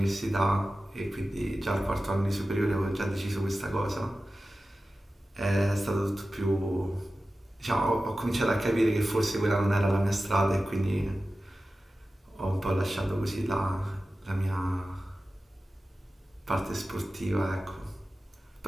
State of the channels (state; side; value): normal; both; correlation 0.94